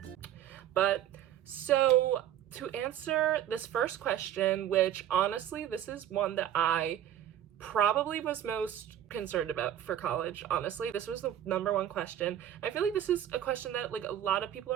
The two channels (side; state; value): left; quieter; 11.0 dB